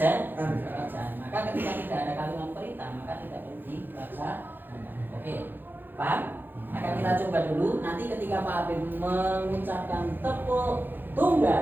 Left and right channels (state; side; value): late; left; 0.094 ms